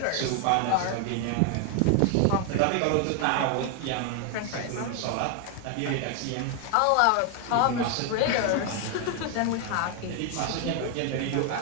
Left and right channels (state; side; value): different; both; correlation 0.01